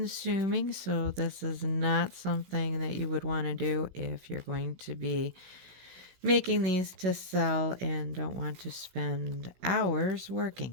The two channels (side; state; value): left; late; 16 ms